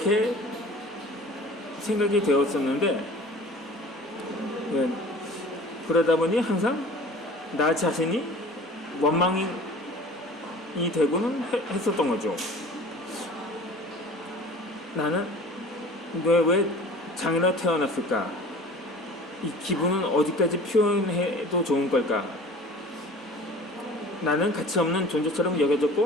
생각이 되었었는데, 그러다 보니 항상 나 자신이 원망이 되고는 했었던 거죠. 나는 왜 장애로 태어났을까? 이 기분은 어디까지 표현해도 좋은 걸까? 나는 가치 없는 존재처럼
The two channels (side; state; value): both; normal; correlation 0.44